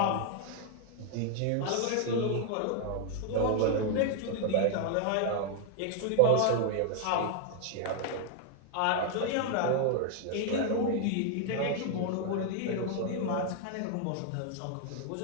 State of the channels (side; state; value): both; different; correlation 0.00